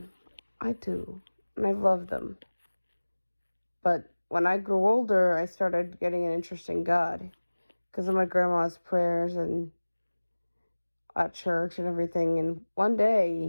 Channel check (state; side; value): inverted; both; correlation -1.00